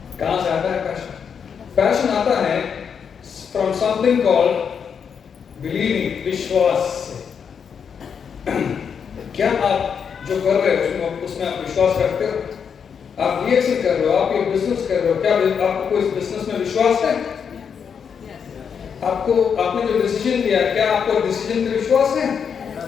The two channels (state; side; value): quieter; right; 6.9 dB